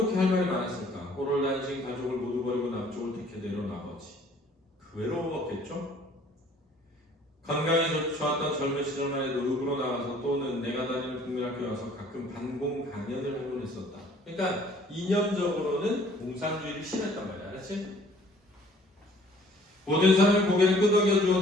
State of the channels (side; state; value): both; normal; correlation 0.56